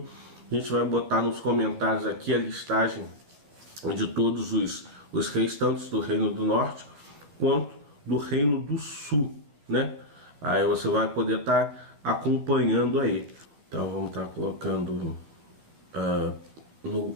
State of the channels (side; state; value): left; late; 13 ms